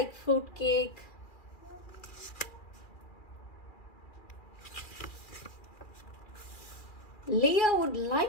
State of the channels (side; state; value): right; late; 2.4 ms